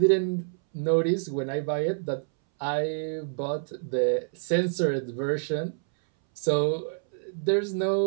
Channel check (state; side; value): silent; left; 60 dB below the other